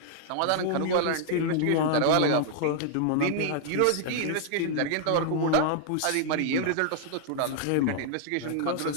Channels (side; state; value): both; different; correlation -0.01